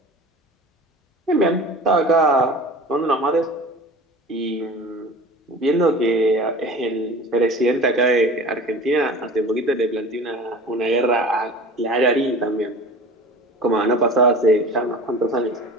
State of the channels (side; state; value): both; normal; correlation 0.39